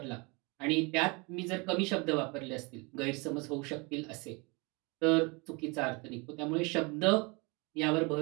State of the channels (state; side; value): quieter; left; 28.6 dB